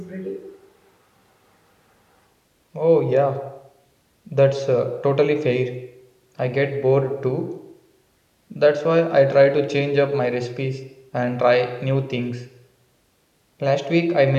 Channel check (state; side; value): identical; both; correlation 1.00